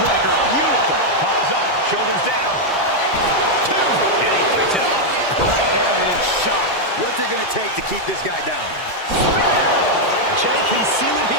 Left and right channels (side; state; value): right; late; 1.3 ms